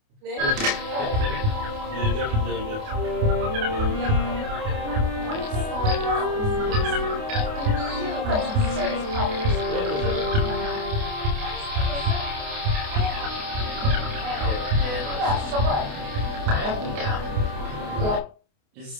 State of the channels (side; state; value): left; late; 28 ms